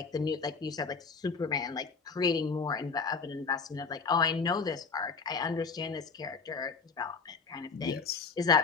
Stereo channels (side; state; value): right; quieter; 4.9 dB